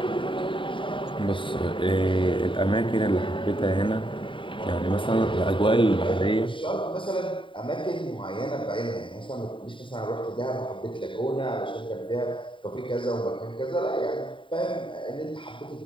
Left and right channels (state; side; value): late; right; 0.25 ms